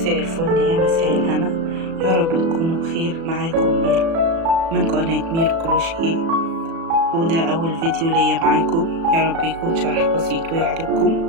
الفل يا مساء الهنا، يا رب تكونوا بخير. معاكم ميرو من قناة ميرو كروشيه، وده أول فيديو ليا معاكم. يا رب يكون شرح بسيط ويعجبكم.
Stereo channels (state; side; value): late; left; 36 ms